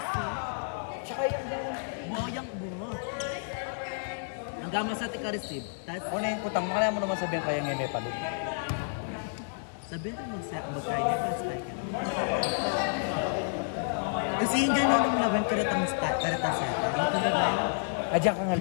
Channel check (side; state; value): right; silent; digital silence